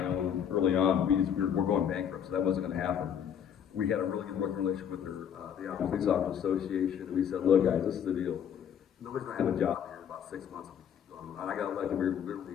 early on. We're going bankrupt, so that wasn't going to happen. We had a really good working relationship with the Ione Police Officers Association, and we said, look guys, this is the deal. Nobody's going to have a job here in about 6 months if we keep going. And I got elected,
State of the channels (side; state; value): right; quieter; 8.6 dB